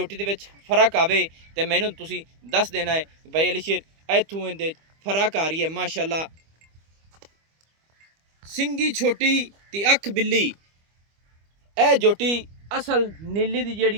दे विच फर्क आवे ते मैनूं तुसीं दस देना है भाई अली शेर इत्थों इहदे फर्क आ रही है माशाल्लाह। सिंगी छोटी ते अख बिल्ली ए जोटी असल नीली दी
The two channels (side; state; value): left; late; 25 ms